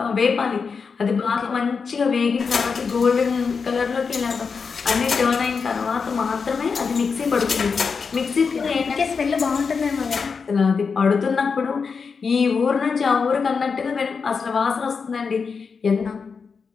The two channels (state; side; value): quieter; right; 5.4 dB